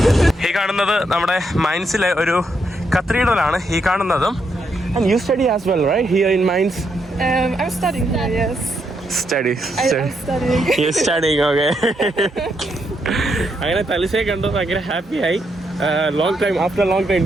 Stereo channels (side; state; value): both; normal; correlation 0.79